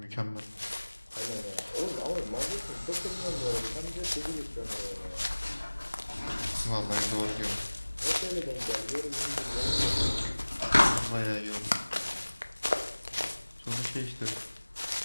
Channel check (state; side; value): inverted; both; correlation -1.00